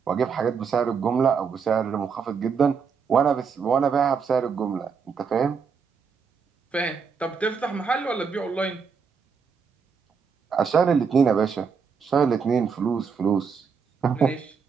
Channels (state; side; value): quieter; left; 6.0 dB